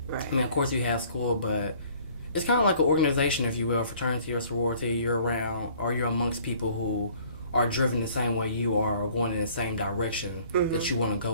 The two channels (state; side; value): inverted; both; correlation -0.55